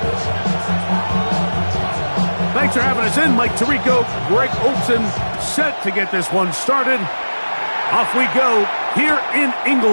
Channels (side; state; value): both; inverted; correlation -1.00